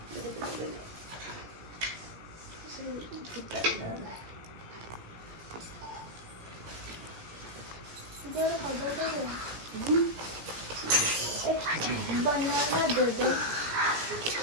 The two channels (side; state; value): left; late; 17 ms